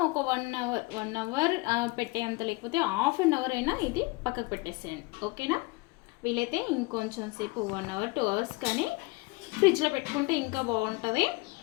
ఒక 1 అవర్ పెట్టేంత, లేకపోతే హాఫ్ అన్ అవర్ అయినా ఇది పక్కకు పెట్టేసేయండి. ఓకేనా, వీలైతే ఇంకొంచెం సేపు 1 అవర్ 2 అవర్స్ కానీ ఫ్రిడ్జ్లో పెట్టుకుంటే ఇంకా బాగుంటుంది.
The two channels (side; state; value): right; quieter; 24.3 dB